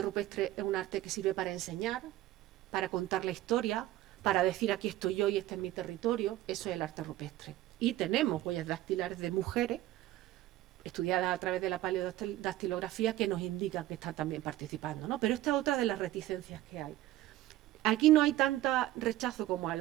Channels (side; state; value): left; quieter; 15.0 dB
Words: es un arte que sirve para enseñar, para contar la historia, para decir aquí estoy yo y este es mi territorio. Eso es el arte rupestre. Y tenemos huellas dactilares de mujeres estudiadas a través de la paleodactilografía que nos indican que están también participando, ¿no? Pero esta es otra de las reticencias que hay. Aquí no hay tanta rechazo como a